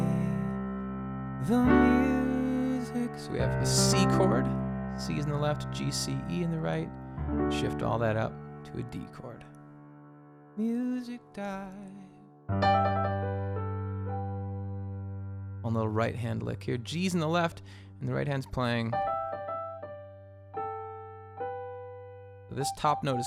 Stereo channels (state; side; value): identical; both; correlation 1.00